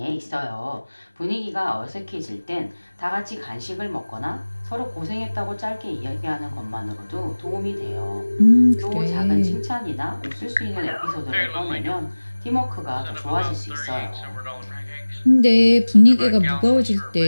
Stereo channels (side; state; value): both; inverted; correlation -1.00